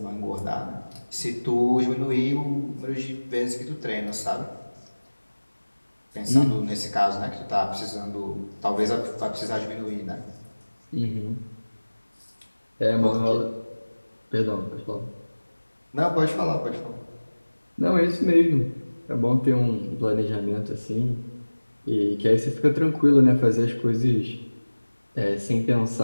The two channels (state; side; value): inverted; both; correlation -1.00